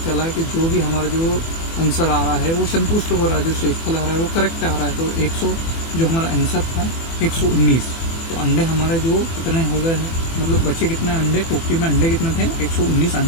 चला कि जो भी हमारा जो आंसर आ रहा है वो संतुष्ट हो रहा है, जो शेषफल आ रहा है वो करेक्ट आ रहा है। तो 100 जो हमारा आंसर था 119। तो अंडे हमारे जो कितने हो गए हैं, मतलब बच्चे कितने अंडे, टोकरी में अंडे कितने थे, 119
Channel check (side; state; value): right; late; 24 ms